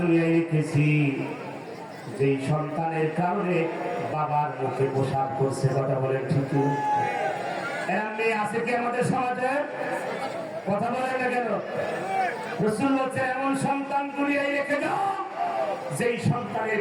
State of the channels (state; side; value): identical; both; correlation 1.00